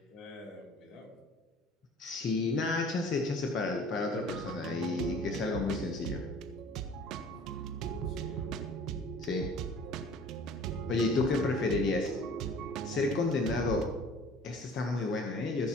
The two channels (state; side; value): normal; both; correlation 0.48